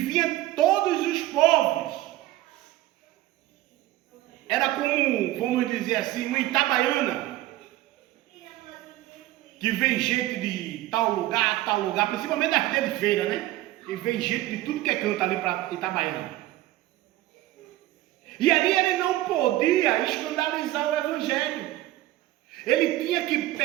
todos os povos. Era como, vamos dizer assim, uma Itabaiana, que vem gente de tal lugar, principalmente das dias de feira, né? E vem gente de tudo que é canto ali para Itabaiana. E ali ele não podia escandalizar o Evangelho. Ele tinha que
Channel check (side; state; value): left; quieter; 16.1 dB